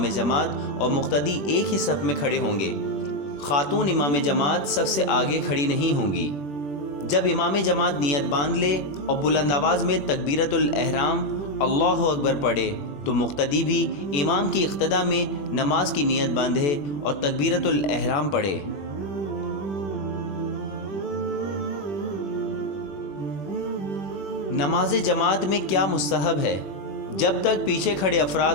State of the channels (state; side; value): late; right; 21 ms